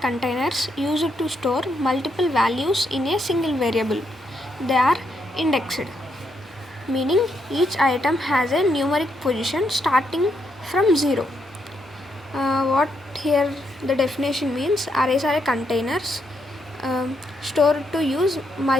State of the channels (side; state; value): both; normal; correlation 0.78